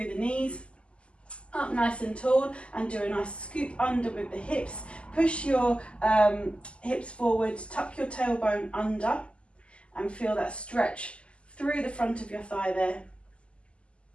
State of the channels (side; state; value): right; late; 0.055 ms